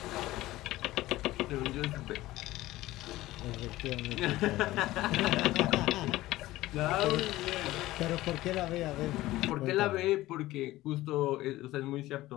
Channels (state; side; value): quieter; right; 16.9 dB